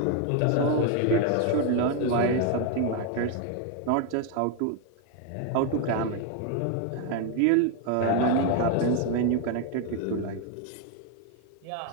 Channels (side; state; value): both; different; correlation 0.01